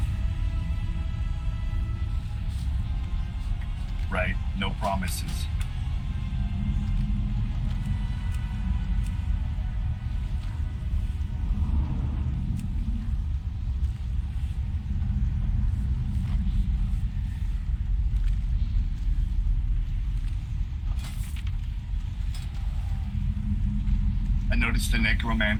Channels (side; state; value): both; identical; correlation 1.00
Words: Right, no promises. I noticed the